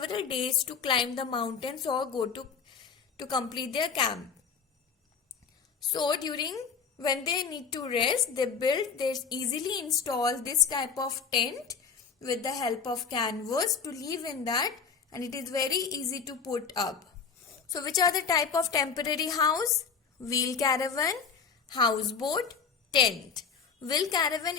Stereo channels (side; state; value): right; quieter; 6.0 dB